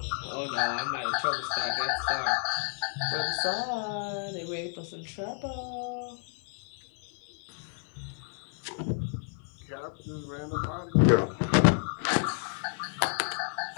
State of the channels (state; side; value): silent; right; 57 dB below the other